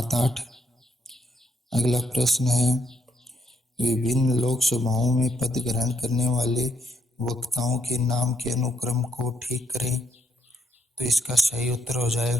अगला प्रश्न है विभिन्न लोकसभाओं में पद ग्रहण करने वाले वक्ताओं के नाम के अनुक्रम को ठीक करें। तो इसका सही उत्तर हो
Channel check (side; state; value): both; normal; correlation 0.75